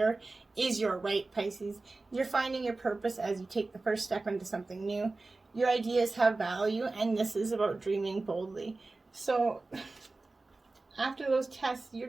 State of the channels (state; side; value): quieter; left; 3.4 dB